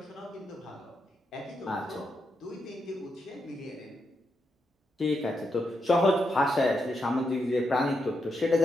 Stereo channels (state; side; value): normal; both; correlation 0.83